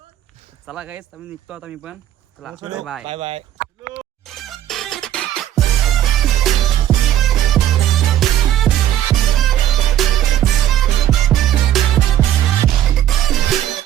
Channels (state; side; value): quieter; left; 11.8 dB